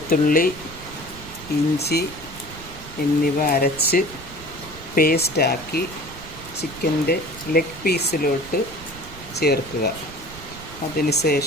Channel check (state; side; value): noise; right; rumble, 16 dB below the sound